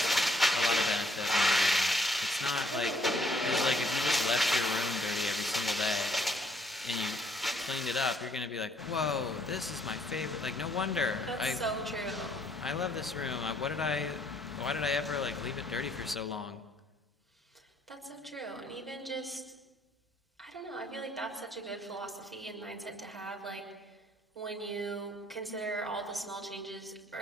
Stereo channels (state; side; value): normal; both; correlation 0.66